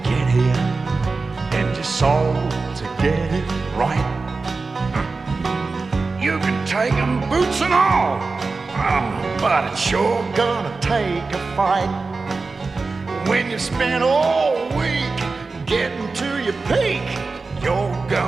get here and your soul to get it right. You can take 'em boots and all, but it's sure gonna take a fight. When you spend all week getting to your peak, you're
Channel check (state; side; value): quieter; left; 3.9 dB